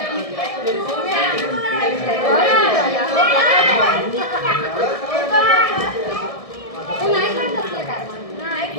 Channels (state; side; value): late; right; 1.7 ms